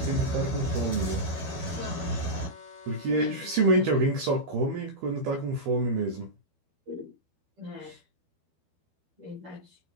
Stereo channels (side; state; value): left; late; 12 ms